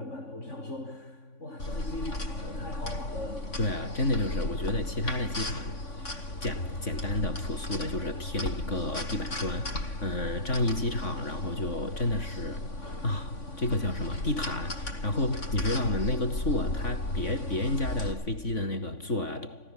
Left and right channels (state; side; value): late; right; 3.5 ms